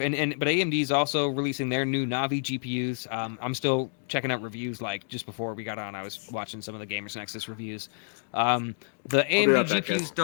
AMD is also releasing their new Navi GPUs. I'm still checking out reviews. Like just before we got on, I was watching some of the Gamers Nexus reviews. The AMD right back, GPUs guys.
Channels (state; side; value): silent; right; digital silence